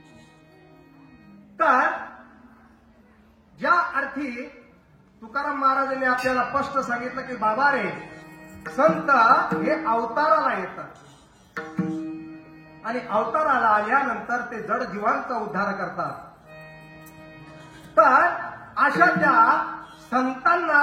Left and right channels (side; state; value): both; identical; correlation 1.00